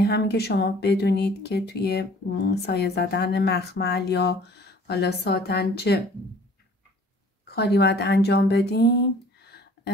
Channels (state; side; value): normal; both; correlation 0.52